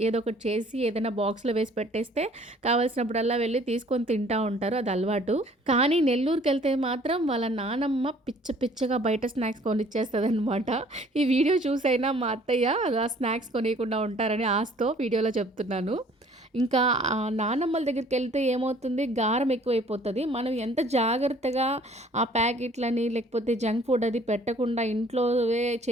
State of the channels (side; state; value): both; normal; correlation 0.55